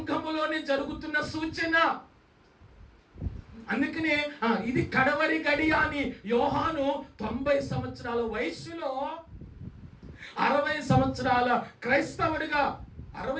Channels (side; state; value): both; identical; correlation 1.00